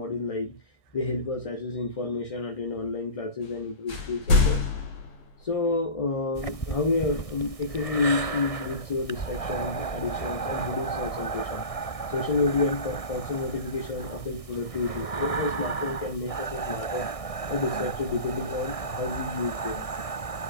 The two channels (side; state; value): right; late; 1.6 ms